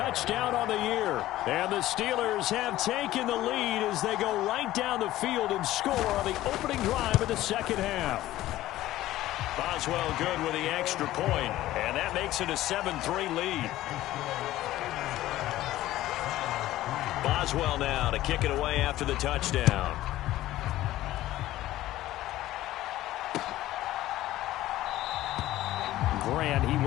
on the year. And the Steelers have taken the lead as they go right down the field and score on the opening drive of the second half. Boswell good with the extra point, and that makes it a 7-3 lead. Boswell now to kick it away after the touchdown. Grant, he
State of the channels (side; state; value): right; quieter; 15.2 dB